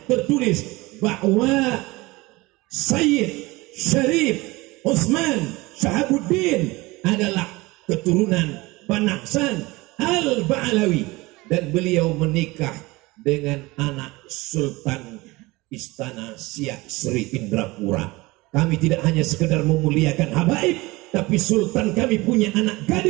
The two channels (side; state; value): left; quieter; 21.8 dB